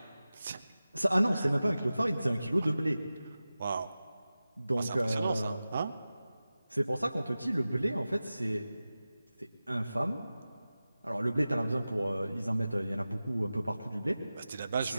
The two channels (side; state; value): both; inverted; correlation -0.95